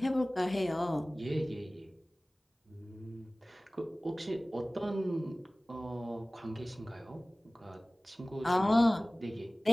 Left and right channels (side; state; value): both; normal; correlation 0.98